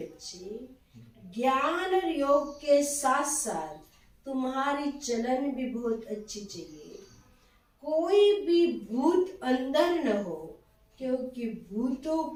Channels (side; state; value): both; identical; correlation 1.00